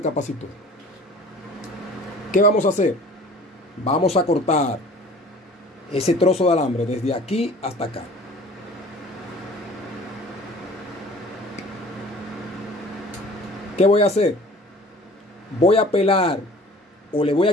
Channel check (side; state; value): both; normal; correlation 0.47